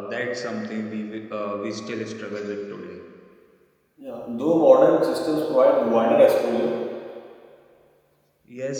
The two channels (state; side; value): identical; both; correlation 1.00